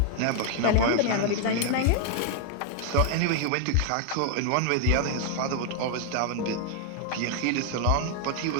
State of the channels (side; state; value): both; different; correlation 0.00